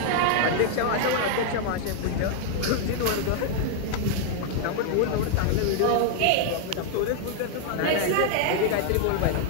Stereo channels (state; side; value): different; both; correlation -0.01